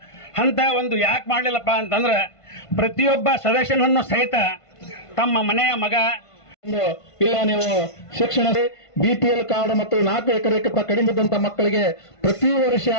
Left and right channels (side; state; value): right; late; 1.5 ms